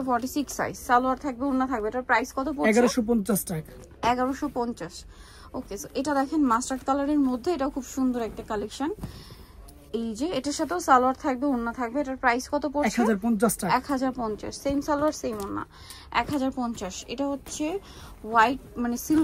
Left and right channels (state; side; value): identical; both; correlation 1.00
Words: 46 সাইজ। সালোয়ার থাকবে, ওড়না থাকবে। এটার প্রাইস কত পড়ছে? 1150 টাকা। 1150। ওকে, সো এটা দেখেন মাস্টার্ড কালারের মধ্যে, এটা খুব সুন্দর একটা কালেকশন। এই যে এটার সাথেও সালোয়ার থাকবে, ওড়না থাকবে। এটার প্রাইস কত পড়ছে? 1050 টাকা। 1050, সেম সালোয়ার সেম ওড়না, 1050। এটা হচ্ছে হোয়াইট মানে